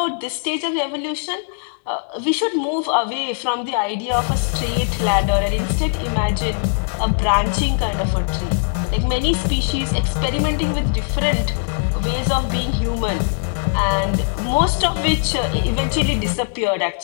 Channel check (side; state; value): right; silent; 62 dB below the other